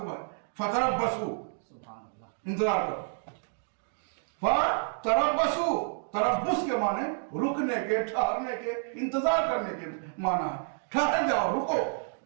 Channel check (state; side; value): silent; left; digital silence